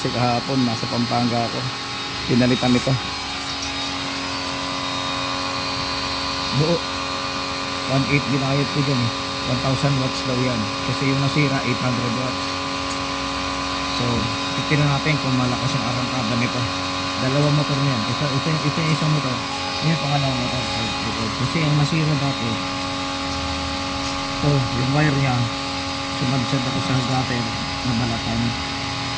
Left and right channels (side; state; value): both; identical; correlation 1.00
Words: kahapon nasa Pampanga ako, pinalitan ito buo 1.8 ginayot ko dyan 1,000 watts daw yan kasi yung nasira 800 watts. So titignan natin kung malakas yung arangkada nito. Dalawang motor niyan, ito yung isang motor, yun yung pangalawang motor kasi yung nasira dati ito yung wire nya sumadsad ako sa gutter na balatan.